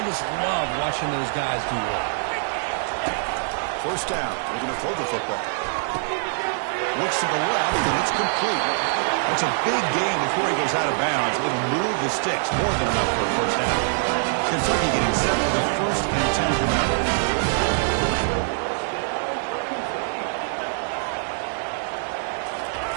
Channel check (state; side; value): silent; left; digital silence